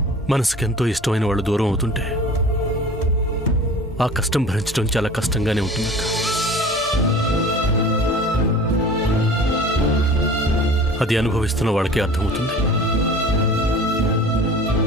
మనసుకెంతో ఇష్టమైన వాళ్ళు దూరం అవుతుంటే ఆ కష్టం భరించడం చాలా కష్టంగానే ఉంటుందక్క. అది అనుభవిస్తున్న వాళ్ళకే అర్థమవుతుంది.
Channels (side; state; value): both; normal; correlation 0.42